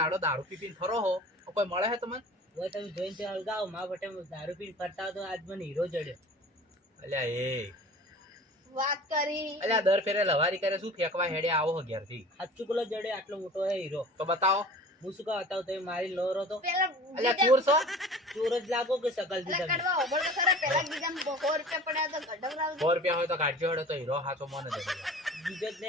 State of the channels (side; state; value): both; normal; correlation 0.42